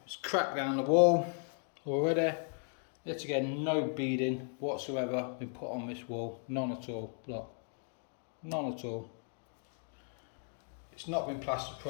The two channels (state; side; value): silent; right; 54 dB below the other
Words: It's cracked down the wall already. Yet again, no beading whatsoever been put on this wall. None at all. Look. None at all. It's not been plastered